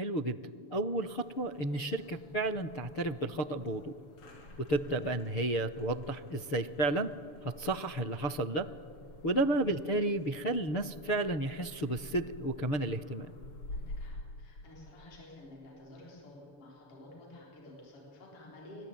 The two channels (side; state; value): right; late; 7.0 ms